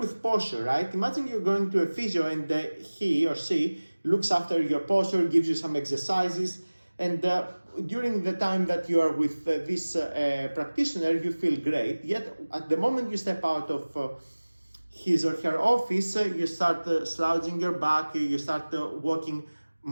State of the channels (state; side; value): inverted; both; correlation -1.00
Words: posture, right? Imagine you're going to a physio and he or she looks after your posture, gives you some exercises, and during the time that you are with this practitioner, you feel great. Yet at the moment you step out of his or her office, you start slouching your back, you start walking